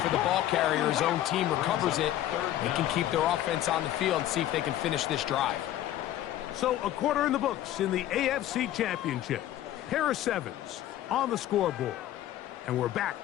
the ball carrier, his own team recovers it. They can keep their offense on the field and see if they can finish this drive. So a quarter in the books in the AFC Championship. Pair of 7s on the scoreboard. And we're back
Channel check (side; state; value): right; quieter; 12.9 dB